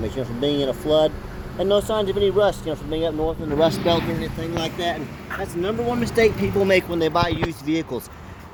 from being in a flood, and no signs of any rust, from being up north in the rust belt or anything like that. And that's the #1 mistake people make when they buy used vehicles.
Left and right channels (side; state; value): both; identical; correlation 1.00